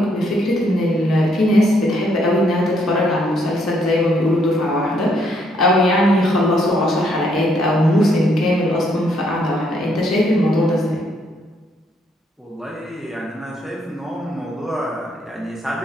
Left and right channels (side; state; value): both; normal; correlation 0.72